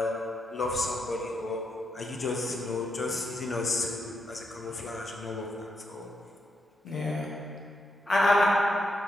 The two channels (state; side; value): normal; both; correlation 0.81